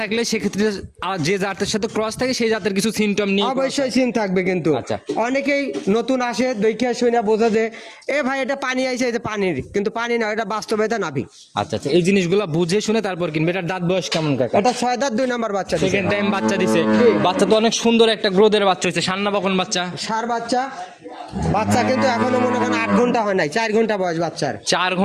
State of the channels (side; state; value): both; identical; correlation 1.00